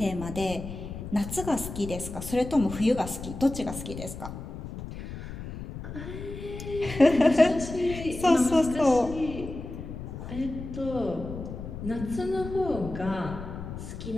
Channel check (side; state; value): left; noise; rumble, 9 dB below the sound